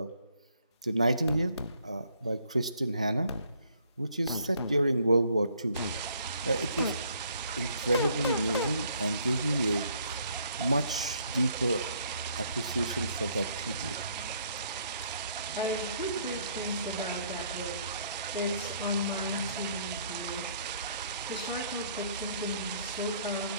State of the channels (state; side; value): inverted; both; correlation -0.65